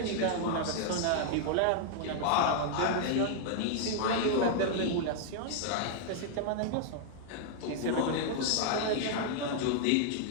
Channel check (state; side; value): different; both; correlation 0.00